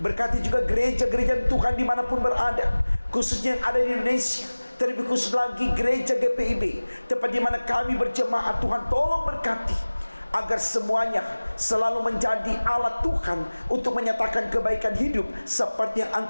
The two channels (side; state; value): both; inverted; correlation -1.00